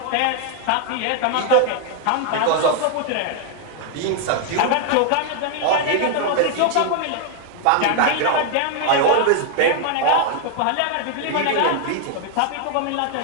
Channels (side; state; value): both; different; correlation 0.00